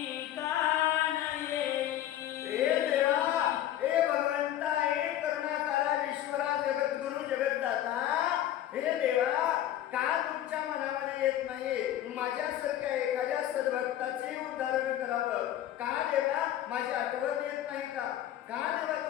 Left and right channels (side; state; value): right; quieter; 12.1 dB